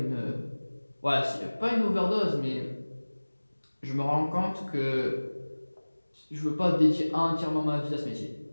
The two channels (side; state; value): both; inverted; correlation -1.00